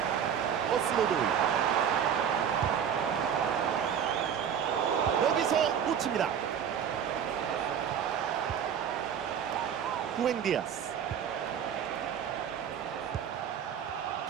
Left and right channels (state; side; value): quieter; left; 8.3 dB